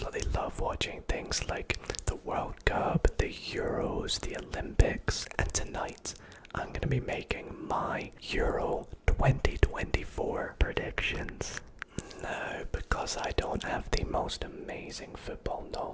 love watching things like the World Cup, the Euros, the Olympics, and tonight I'm going to be making my Euro 2024 predictions. No, because I don't have the most amazing football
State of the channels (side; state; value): both; identical; correlation 1.00